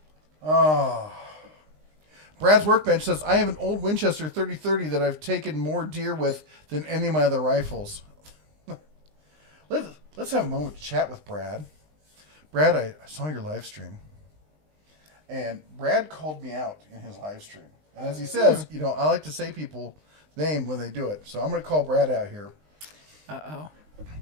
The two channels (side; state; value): left; late; 19 ms